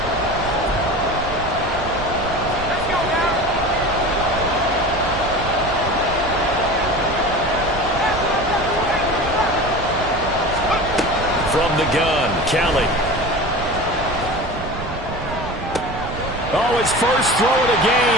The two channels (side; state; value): right; noise; rumble, 10 dB below the sound